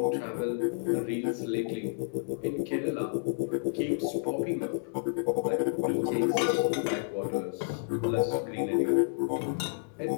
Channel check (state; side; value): silent; right; digital silence